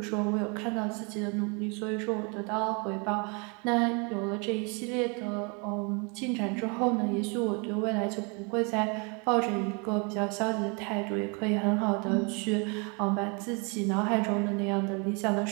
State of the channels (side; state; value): left; quieter; 32.9 dB